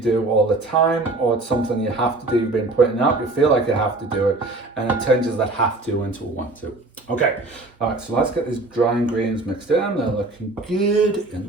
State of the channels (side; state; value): left; quieter; 3.1 dB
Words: all the time, or it's something you have to do, you've been putting up, you feel like you have to do it, and it changes that have to into a want to. Okay, all right, so let's get these dry ingredients mixed in. They're looking good in